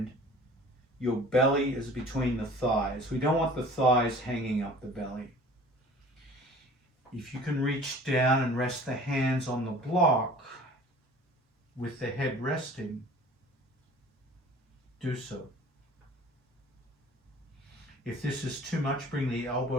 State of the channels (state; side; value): normal; both; correlation 0.47